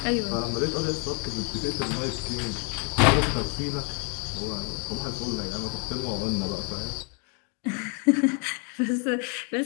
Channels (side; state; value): right; quieter; 38.3 dB